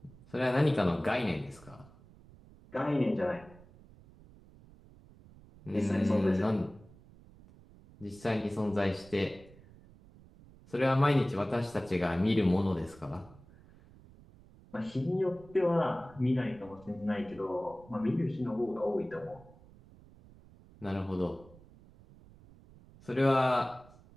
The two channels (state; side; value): noise; right; rumble, 23 dB below the sound